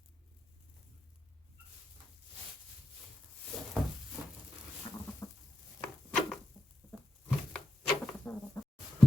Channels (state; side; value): normal; both; correlation 0.87